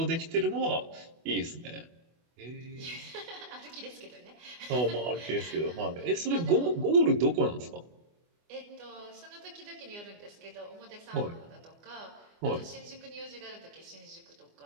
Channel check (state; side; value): late; left; 24 ms